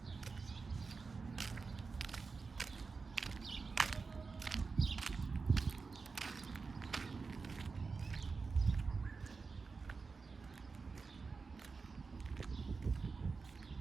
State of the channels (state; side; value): quieter; left; 4.5 dB